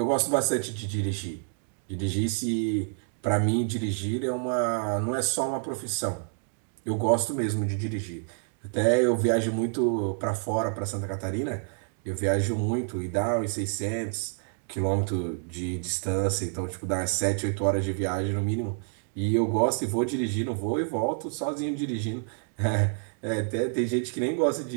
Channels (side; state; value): left; silent; 59 dB below the other